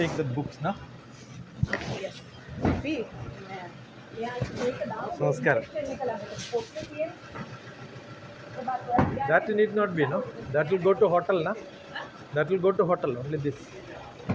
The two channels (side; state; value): both; identical; correlation 1.00